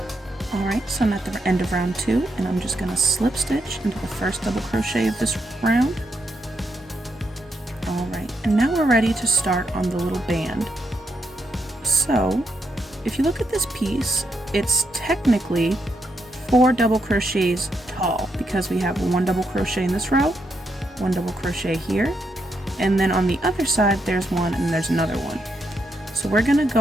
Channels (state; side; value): normal; both; correlation 0.80